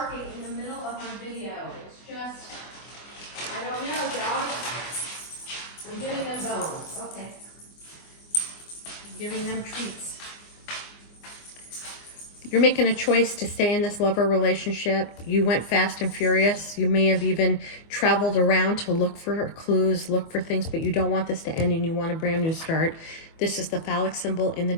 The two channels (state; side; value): late; right; 24 ms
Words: in the middle of my video? It's just, I don't know, dog. I'm giving them bones. Okay. I'm giving them treats. You're making a choice to stay in this lover relationship. You went fast and furious. You may have even traveled around to look for clues, look for things, but you don't want this to end and you want a brand new start. This is the phallic symbol in the